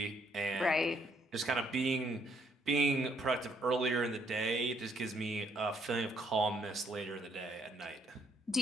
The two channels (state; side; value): normal; both; correlation 0.69